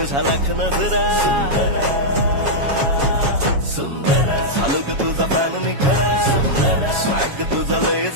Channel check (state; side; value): late; left; 7.2 ms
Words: लाख नजरा झालो ग तुझा फॅन मी खरा स्वॅग तुझा लय